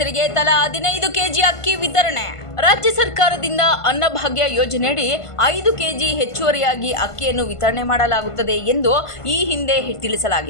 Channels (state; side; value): late; right; 1.5 ms